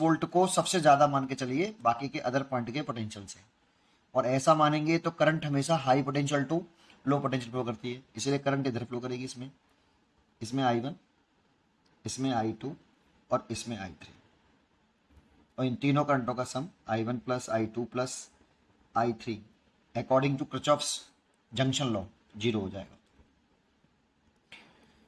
को सबसे ज़्यादा मान के चलिए बाकी के अदर पॉइंट के पोटेंशियल से। और ऐसा मानेंगे तो करंट हमेशा high potential to low potential flow करती है, इसलिए करंट इधर फ्लो करेगी, इसमें इसमें I1, इसमें I2 और इसमें I3। और इन तीनों करंटों का sum I1 plus I2 plus I3 according to Kirchhoff's junction law 0 हो जाएगा।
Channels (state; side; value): identical; both; correlation 1.00